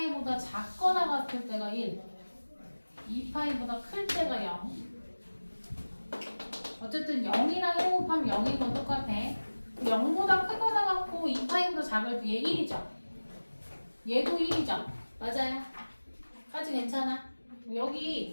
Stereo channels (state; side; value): inverted; both; correlation -1.00